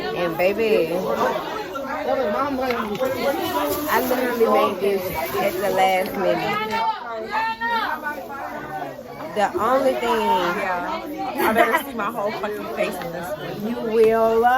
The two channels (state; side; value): identical; both; correlation 1.00